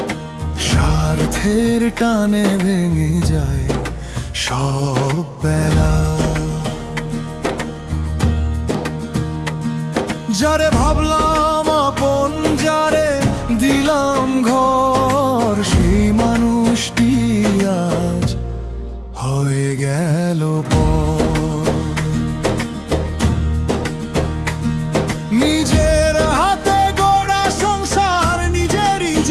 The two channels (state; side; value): identical; both; correlation 1.00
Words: স্বার্থের টানে ভেঙে যায় সব বেলা। যারে ভাবলাম আপন, যারে দিলাম ঘর, সেই মানুষটি আজ হয়ে গেল পর। নিজের হাতে গড়া সংসার নিজেরই